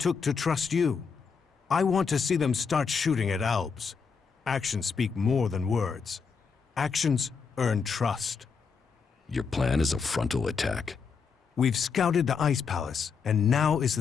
to trust you. I want to see them start shooting at Alps. Actions speak more than words. Actions earn trust. Your plan is a frontal attack? We've scouted the Ice Palace, and now is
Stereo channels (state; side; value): quieter; right; 5.7 dB